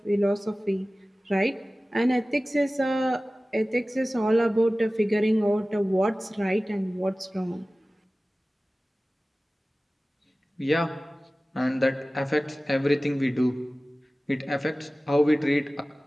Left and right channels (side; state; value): both; normal; correlation 0.97